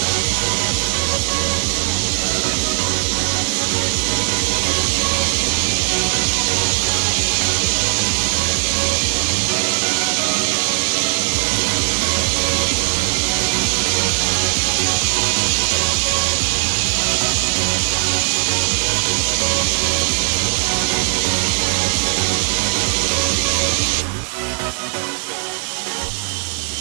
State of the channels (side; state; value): left; silent; digital silence